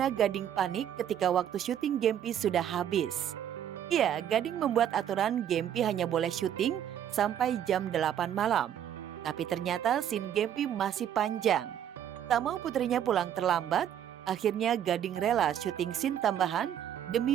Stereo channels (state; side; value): quieter; left; 10.0 dB